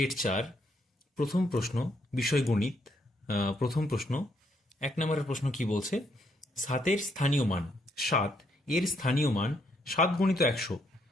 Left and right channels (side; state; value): both; normal; correlation 0.73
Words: 4 প্রথম প্রশ্ন বিষয় গণিত। প্রথম প্রশ্ন 1 নম্বরের প্রশ্ন কি বলছে? 7 স্থানীয় মান 7 এর স্থানীয় মান 7 গুণিত 100।